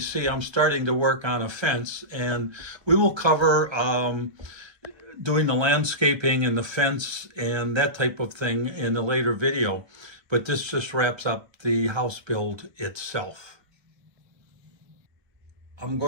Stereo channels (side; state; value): left; late; 1.3 ms